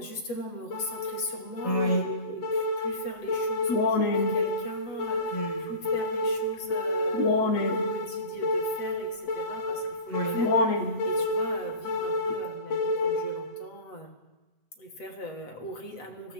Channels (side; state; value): right; late; 8.0 ms